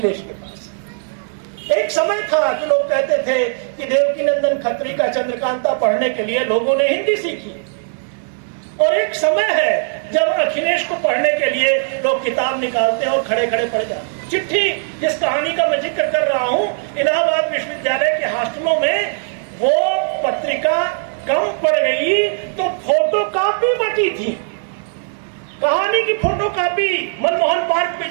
के पास है। एक समय था कि लोग कहते थे कि देवकीनंदन खत्री का चंद्रकांता पढ़ने के लिए लोगों ने हिंदी सीखी, और एक समय है जब अखिलेश को पढ़ने के लिए लोग किताब निकालते हैं और खड़े खड़े पढ़ जाते हैं। चिट्ठी, जिस कहानी का मैं जिक्र कर रहा हूं, इलाहाबाद विश्वविद्यालय के हॉस्टलों में वो पत्रिका कम पड़ गई तो फोटोकॉपी बची थी। कहानी की फोटोकॉपी मनमोहन पार्क में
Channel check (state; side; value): silent; left; digital silence